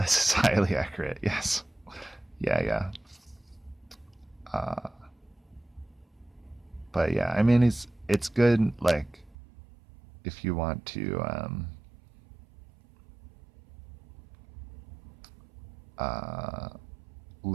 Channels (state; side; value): drops out; left; at 9.3 s